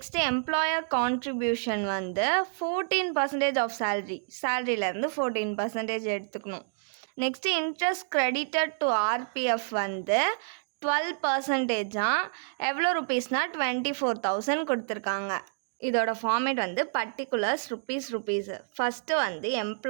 எம்ப்ளாயர் கான்ட்ரிபியூஷன் வந்து 14% ஆஃப் சேலரியிலேருந்து 14% எடுத்துக்கணும். Next interest credited to RPF வந்து 12%. எவ்வளோ ருபீஸ்னால் 24,000 கொடுத்துருக்காங்க. இதோட ஃபார்மேட் வந்து பர்டிகுலர்ஸ் ருபீஸ். ஃபஸ்ட்டு வந்து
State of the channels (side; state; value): left; silent; digital silence